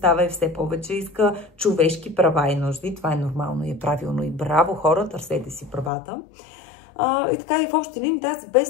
и все повече иска човешки права и нужди. Това е нормално и е правилно и браво хора, търсете си правата. И така и в общи линии тази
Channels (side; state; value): right; drops out; at 5.9 s